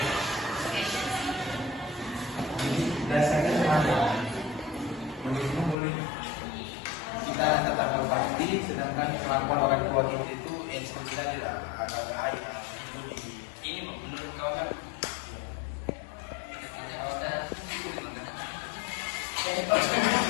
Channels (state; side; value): drops out; right; at 5.8 s